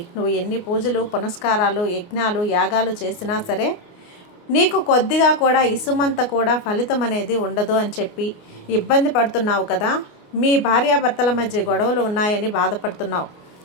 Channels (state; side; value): late; right; 29 ms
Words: నువ్వు ఎన్ని పూజలు, పునస్కారాలు, యజ్ఞాలు, యాగాలు చేసినా సరే నీకు కొద్దిగా కూడా ఇసుమంత కూడా ఫలితం అనేది ఉండదు అని చెప్పి ఇబ్బంది పడుతున్నావు కదా. మీ భార్యాభర్తల మధ్య గొడవలు ఉన్నాయని బాధపడుతున్నావు.